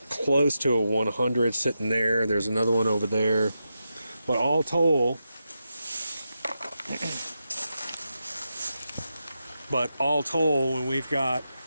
close to a 100 sitting there. There's another one over there. But all told, when we've got,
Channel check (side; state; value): both; inverted; correlation -0.88